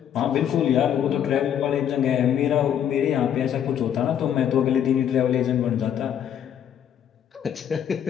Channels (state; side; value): quieter; right; 9.4 dB